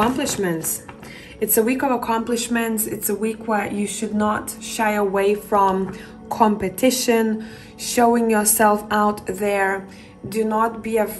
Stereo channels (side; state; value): both; identical; correlation 1.00